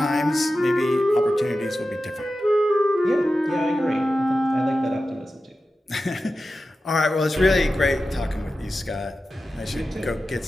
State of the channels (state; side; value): normal; both; correlation 0.93